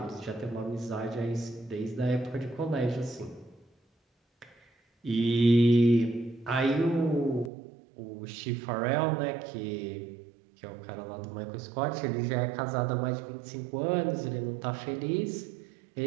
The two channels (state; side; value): drops out; left; at 7.5 s